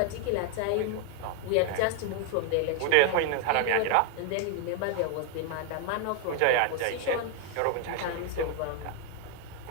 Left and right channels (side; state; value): both; different; correlation 0.01